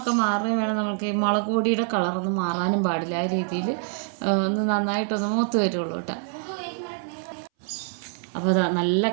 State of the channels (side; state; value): left; silent; 62 dB below the other